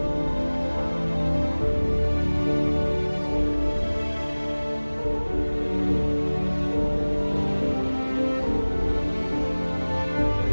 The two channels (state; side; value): inverted; both; correlation -1.00